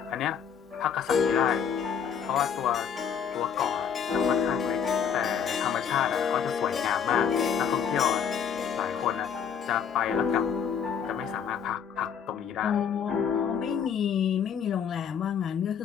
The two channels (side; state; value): right; quieter; 7.6 dB